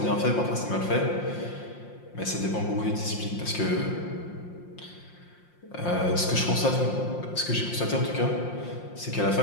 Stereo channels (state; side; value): late; right; 5.7 ms